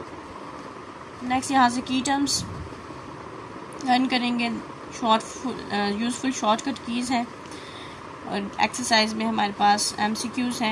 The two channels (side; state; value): both; identical; correlation 1.00